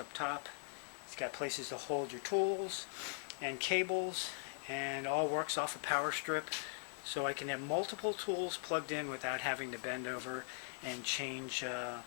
up top. It's got places to hold your tools and cables, and all works off a power strip, so I can have multiple tools plugged in without having to bend over and change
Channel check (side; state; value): right; silent; digital silence